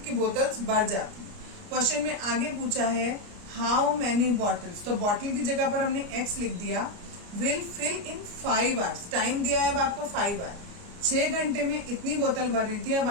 की बोतल्स भर जाती है। क्वेश्चन में आगे पूछा है हाउ मैनी बॉटल्स, तो बॉटल की जगह पर हमने x लिख दिया, will fill in 5 hours, time दिया है अब आपको 5 आवर, 6 घंटे में इतनी बोतल भर रही थी, अब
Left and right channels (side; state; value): left; late; 29 ms